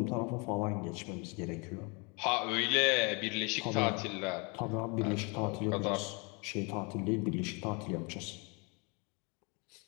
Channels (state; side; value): quieter; right; 31.4 dB